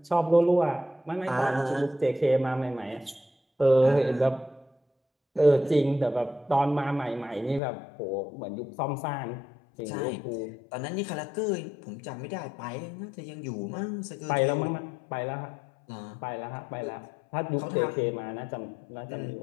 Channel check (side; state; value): right; drops out; at 7.6 s